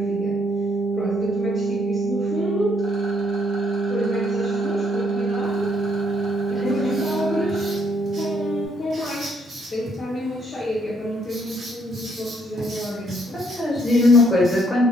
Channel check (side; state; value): both; normal; correlation 0.70